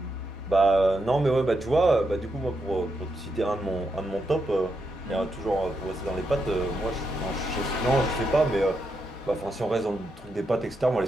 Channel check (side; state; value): both; normal; correlation 0.83